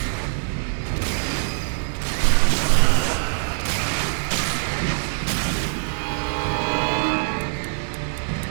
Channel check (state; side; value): silent; left; digital silence